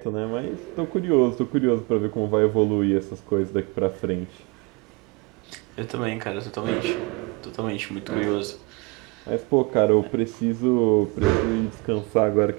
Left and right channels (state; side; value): quieter; left; 27.7 dB